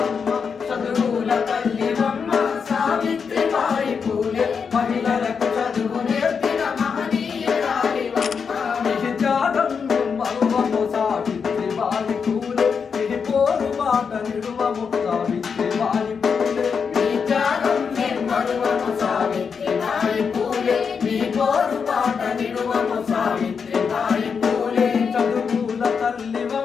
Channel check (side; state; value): right; quieter; 6.0 dB